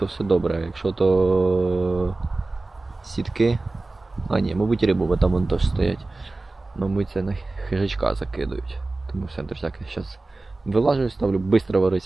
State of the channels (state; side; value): quieter; left; 3.2 dB